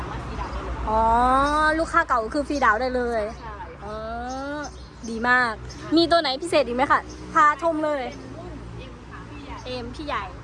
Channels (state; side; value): identical; both; correlation 1.00